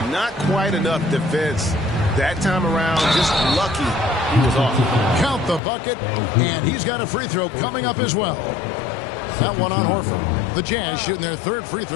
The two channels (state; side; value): drops out; right; at 5.6 s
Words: Not quite enough defense. That time around, just lucky he was off. Count the bucket, and he's got a free throw coming up as well. That one on Horford. The Jazz shooting their 3rd free